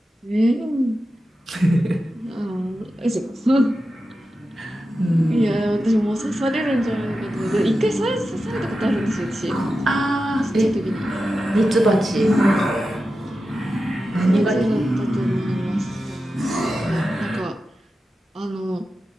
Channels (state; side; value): normal; both; correlation 0.91